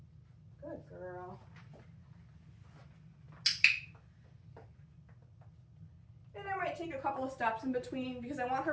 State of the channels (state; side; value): identical; both; correlation 1.00